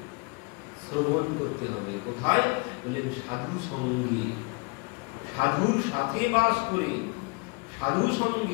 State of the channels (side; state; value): right; quieter; 30.4 dB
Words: শ্রবণ করতে হবে। কোথায়, বললেন সাধু সঙ্গে, সাধুর সাথে বাস করে, সাধু